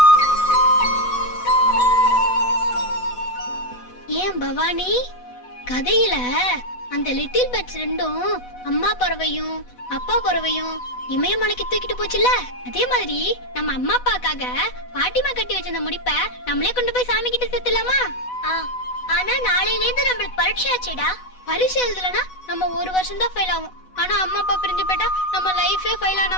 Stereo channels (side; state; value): right; late; 8.1 ms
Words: ஏன் பவானி, கதையில அந்த லிட்டில் பேர்ட்ஸ் 2ம் அம்மா பறவையும் அப்பா பறவையும் இமயமலைக்கு தூக்கிட்டு போச்சுல்ல, அதே மாதிரி நம்ம அம்மா அப்பாக்காக பாட்டிமா கட்டி வச்சிருந்த முடிப்ப நம்மளே கொண்டு போய் சாமி கிட்ட சேர்த்துலாமா? ஆனா நாளையில இருந்து நம்மளுக்கு பரீட்சை ஆச்சுடா. பரீட்சை எழுதலனா நம்ம 1 வருஷம் தான் ஃபெயில் ஆகும். ஆனா அம்மா அப்பா பிரிஞ்சு போயிட்டா நம்ம லைஃபே ஃபெயில் ஆன